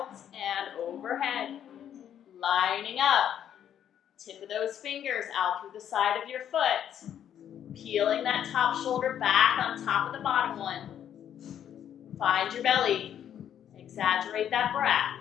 and overhead. Lining up. Tip of those fingers out through the side of your foot. Peeling that top shoulder back on top of the bottom one. Find your belly. Exaggerate that breath.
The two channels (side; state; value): right; quieter; 9.8 dB